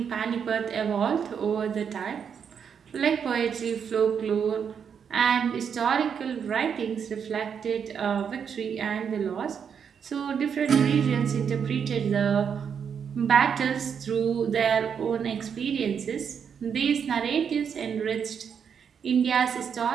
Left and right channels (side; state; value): left; quieter; 7.2 dB